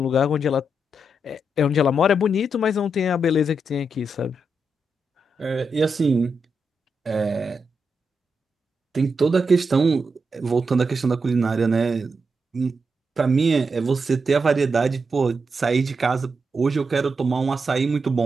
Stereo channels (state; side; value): normal; both; correlation 0.84